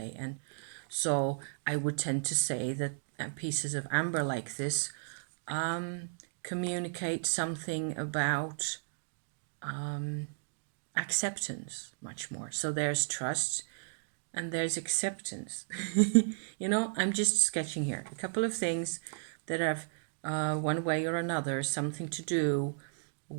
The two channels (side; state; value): left; silent; digital silence